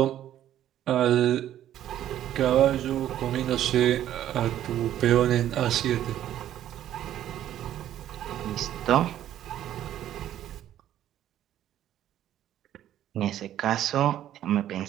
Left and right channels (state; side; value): quieter; left; 11.9 dB